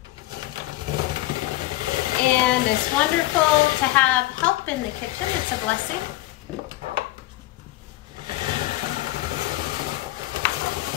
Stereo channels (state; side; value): quieter; right; 17.4 dB